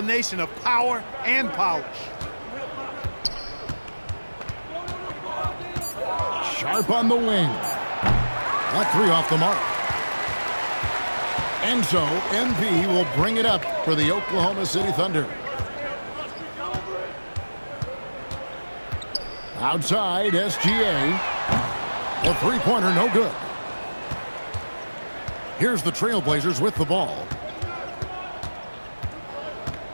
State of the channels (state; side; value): inverted; both; correlation -1.00